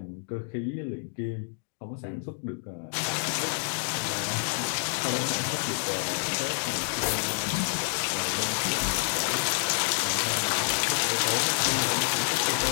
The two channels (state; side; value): silent; right; digital silence